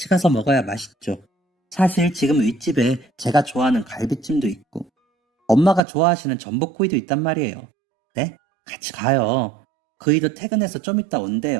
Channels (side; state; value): left; drops out; at 5.8 s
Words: 가서 먹어야 맛있죠. 사실 지금 윗집에 제가 좋아하는 갈비찜도 있고 엄마가 좋아하시는 전복구이도 있단 말이에요. 네? 같이 가요. 그이도 퇴근해서 좀 이따